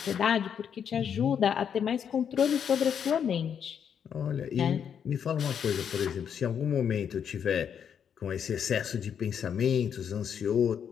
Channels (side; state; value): right; quieter; 8.0 dB